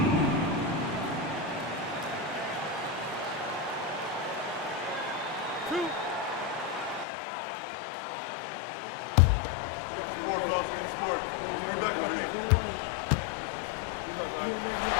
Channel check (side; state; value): right; drops out; at 7.1 s